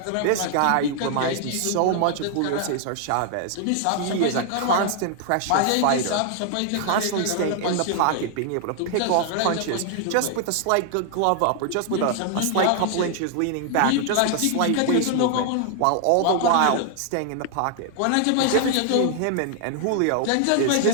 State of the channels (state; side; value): different; both; correlation 0.00